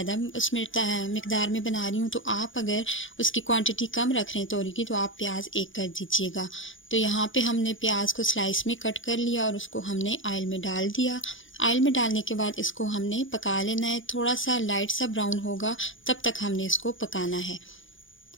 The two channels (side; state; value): right; late; 0.57 ms